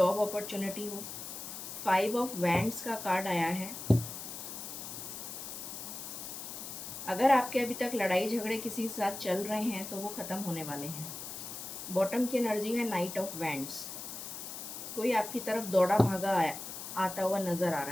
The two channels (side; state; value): left; noise; hiss, 8 dB below the sound